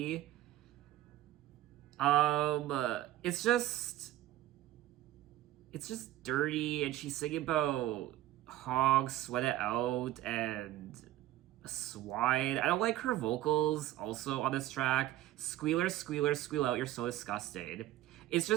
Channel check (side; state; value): left; quieter; 14.3 dB